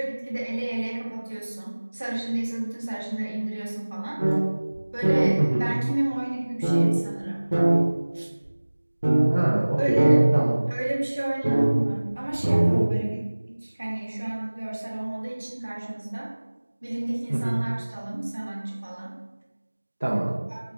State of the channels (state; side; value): inverted; both; correlation -1.00